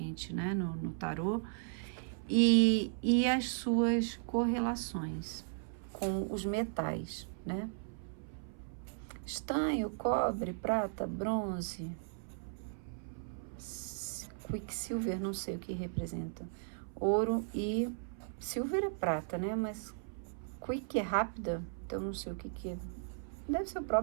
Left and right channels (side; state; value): left; silent; 54 dB below the other